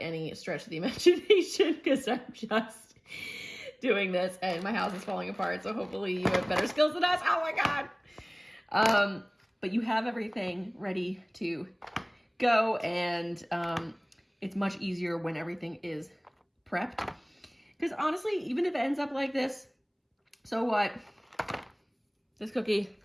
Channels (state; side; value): identical; both; correlation 1.00